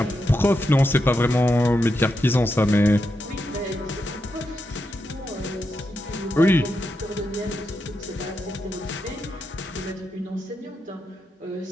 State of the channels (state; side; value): normal; both; correlation 0.85